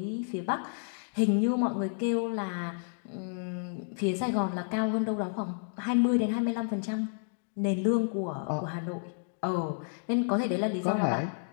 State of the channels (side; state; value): right; silent; digital silence